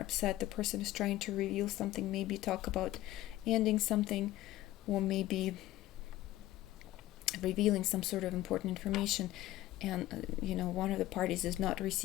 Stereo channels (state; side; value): quieter; right; 15.6 dB